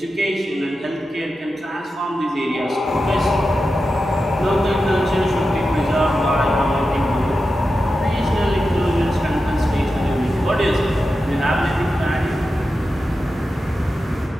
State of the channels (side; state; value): both; normal; correlation 0.91